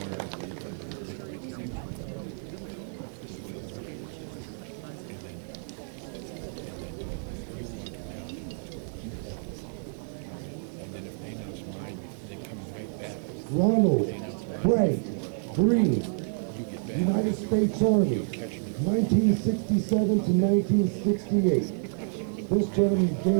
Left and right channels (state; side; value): silent; left; digital silence